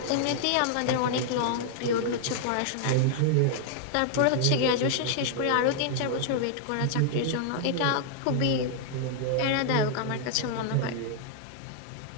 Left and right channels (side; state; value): both; different; correlation -0.01